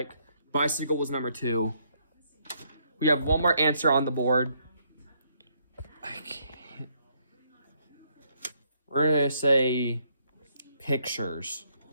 Bicycle was number 2. We have 1 more answer on the board. I can't. We're going to say pictures.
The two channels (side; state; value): both; inverted; correlation -0.72